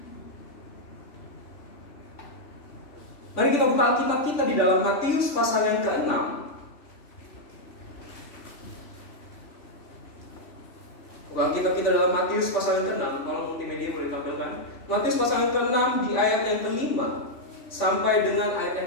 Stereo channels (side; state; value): right; late; 3.4 ms